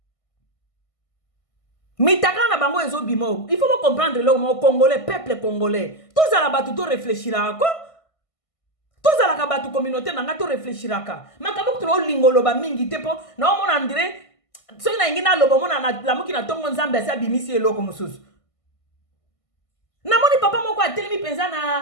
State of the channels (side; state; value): right; late; 1.5 ms